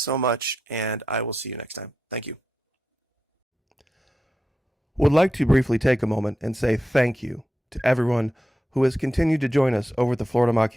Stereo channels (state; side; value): normal; both; correlation 0.88